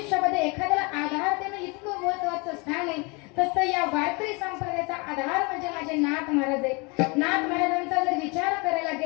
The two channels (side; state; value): right; quieter; 29.0 dB